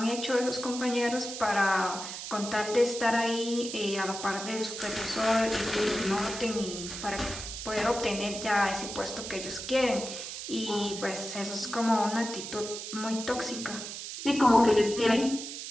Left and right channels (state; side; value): noise; right; hiss, 8 dB below the sound